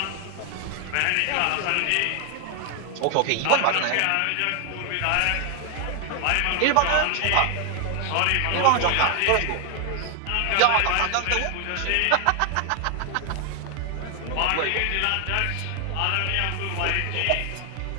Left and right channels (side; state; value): both; different; correlation 0.00